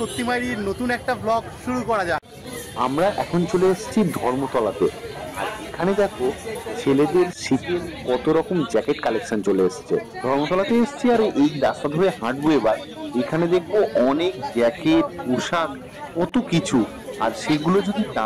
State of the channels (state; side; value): identical; both; correlation 1.00